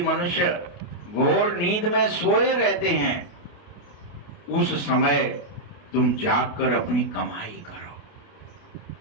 मनुष्य घोर नींद में सोए रहते हैं, उस समय तुम जागकर अपनी कमाई करो।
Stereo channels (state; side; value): late; right; 28 ms